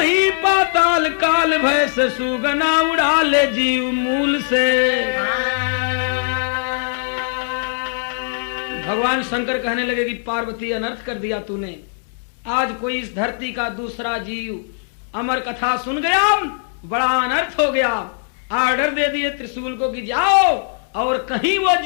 पाताल काल भय से सुगना उड़ा ले जीव मूल से। भगवान शंकर कहने लगे कि पार्वती अनर्थ कर दिया तूने आज कोई इस धरती का दूसरा जीव अमर कथा सुन गया बड़ा अनर्थ हो गया। आर्डर दे दिए त्रिशूल को कि जाओ और कहीं वो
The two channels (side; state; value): right; silent; digital silence